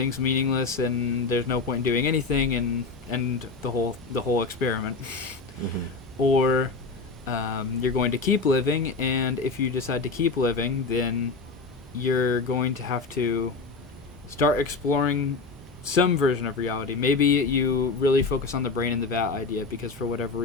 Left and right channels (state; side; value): quieter; right; 4.2 dB